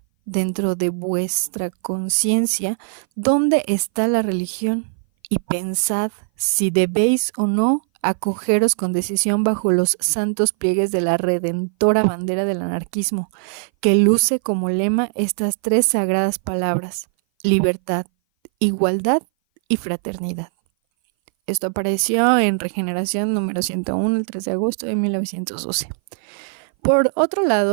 dentro de vuestra conciencia dónde está la religión y pensad si debéis o no acogeros con decisión bajo los santos pliegues de la redentora bandera del anarquismo, que luce como lema estas tres sagradas palabras: libertad, igualdad y fraternidad. Esto apareció en Regeneración número 101, el 3 de agosto de 1912. Por otro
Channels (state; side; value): silent; left; 59 dB below the other